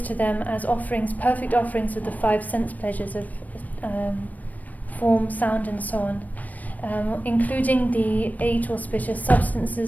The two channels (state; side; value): late; right; 0.077 ms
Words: to them as offerings, perfect offerings of the five sense pleasures of form, sound, and so on, including the 8 auspicious